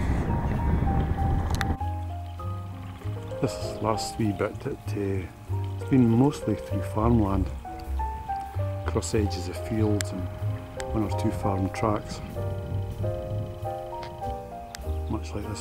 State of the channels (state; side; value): identical; both; correlation 1.00